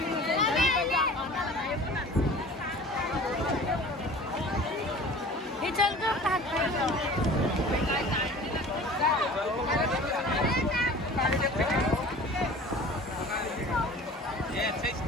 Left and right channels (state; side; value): normal; both; correlation 0.42